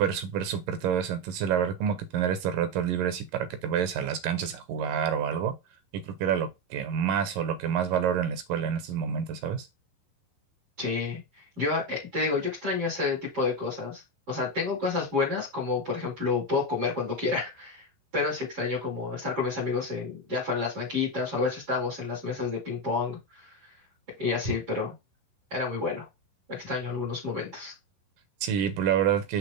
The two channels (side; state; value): left; late; 11 ms